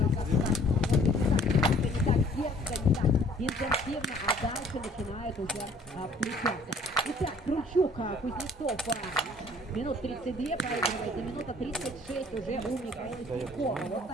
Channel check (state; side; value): normal; both; correlation 0.56